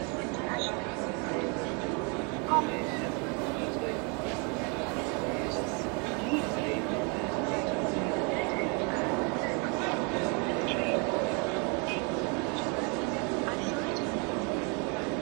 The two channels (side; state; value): left; quieter; 34.0 dB